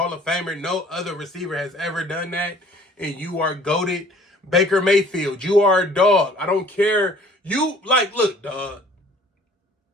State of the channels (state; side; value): normal; both; correlation 0.53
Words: of Famer. No other receiver has ever done that. And you are goated. Baker Mayfield, you are a dog. I don't care. Look, dog.